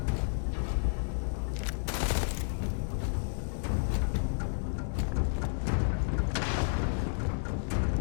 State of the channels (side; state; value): right; silent; digital silence